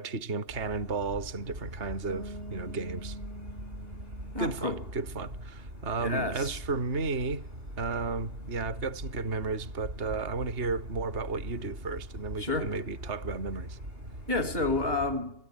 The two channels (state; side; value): late; left; 2.8 ms